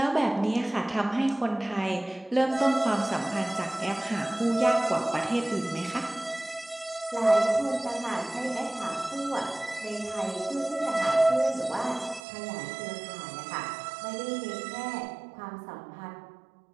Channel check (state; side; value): drops out; left; at 12.2 s